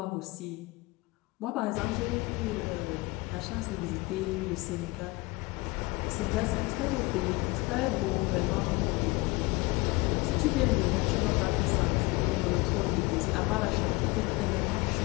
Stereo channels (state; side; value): quieter; right; 23.4 dB